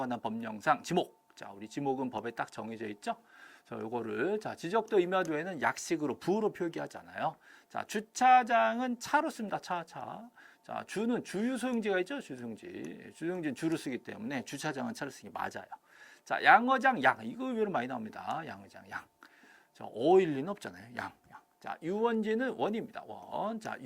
법령상 지목. 자, 우리 지목은 법에 딱 정해져 있죠. 요거를 지적도 임야도에는 약식으로 부로 표기하잖아요. 자, 주차장은 차로 씁니다. 차. 자, 주는 주유소용지가 있죠. 주유소용지는 주로 쓰기 때문에 주차장은 차로 쓰기 맞아요. 자, 양어장 양 이거 의외로 많이 나옵니다. 양어장 양. 자, 어일 리는 없잖아요. 양. 자, 유원지는 원입니다. 원. 자,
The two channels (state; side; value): identical; both; correlation 1.00